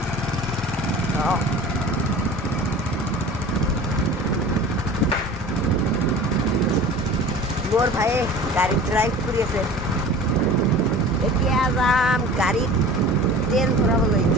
মোর ভাইয়ে গাড়ি ড্রাইভ কৰি আছে এতিয়া যাম গাড়ীত তেল ভৰাবলৈ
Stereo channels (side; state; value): both; normal; correlation 0.40